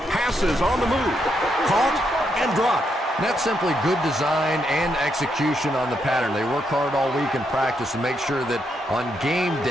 Passes on the move. Caught and dropped. That's simply good design and execution on the pattern. They work hard all week in practice to make sure that on game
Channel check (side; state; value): both; normal; correlation 0.79